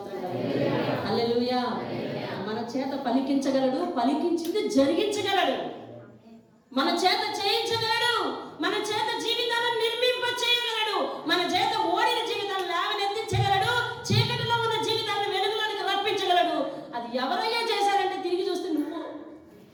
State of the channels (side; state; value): both; identical; correlation 1.00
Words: కదా. హల్లెలూయా. మన చేత పలికించగలడు, పలికించింది జరిగించగలడు, మన చేత చేయించగలడు, మన చేత జీవితాలను నిర్మింప చేయగలడు, మన చేత ఓడిన జీవితాలను లేవనెత్తించగలడు, చీకటిలో ఉన్న జీవితాలను వెలుగులోనికి రప్పించగలడు. అది ఎవరయ్యా చేశారంటే తిరిగి చూస్తే